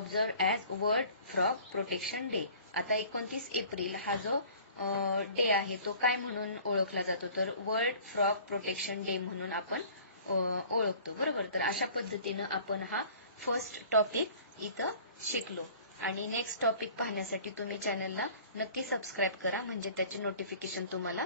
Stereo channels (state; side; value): inverted; both; correlation -0.48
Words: as world frog protection day. आता 29 एप्रिल हा जो डे आहे तो काय म्हणून ओळखला जातो तर वर्ल्ड फ्रॉग प्रोटेक्शन डे म्हणून आपण ओळखतो. बरोबर. तर अशा पद्धतीनं आपण हा फर्स्ट टॉपिक इथं शिकलो आणि नेक्स्ट टॉपिक पाहण्यासाठी तुम्ही चॅनलला नक्की सबस्क्राईब करा म्हणजे त्याचे नोटिफिकेशन तुम्हाला